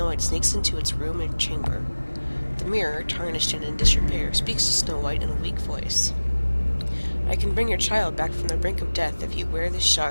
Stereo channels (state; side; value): inverted; both; correlation -1.00